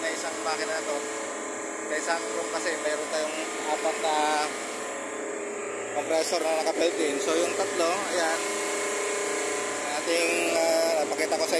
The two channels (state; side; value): identical; both; correlation 1.00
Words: na isang makina na to. Sa isang room kasi mayroon tayong apat na compressor na naka-built in. So yung tatlo, ayan, ating pakita ko